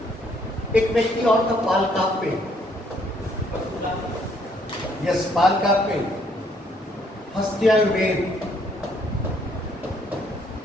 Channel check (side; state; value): both; normal; correlation 0.67